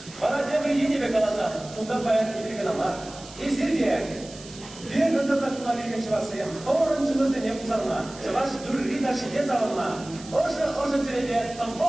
Bana cemriye be kalasa, bundan bayan bir kanama. İzirge, bir gönde takıma bir geçivasıyım. Oruncumuzda ne kuzanma, çavaş durri taşı ne zavalma. Oşu türede tam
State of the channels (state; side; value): noise; right; hiss, 18 dB below the sound